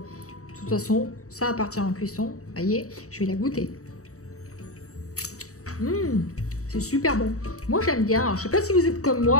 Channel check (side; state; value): right; late; 0.65 ms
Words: De toute façon, ça va partir en cuisson. Vous voyez, je vais la goûter. C'est super bon. Moi, j'aime bien. Alors, je ne sais pas si vous êtes comme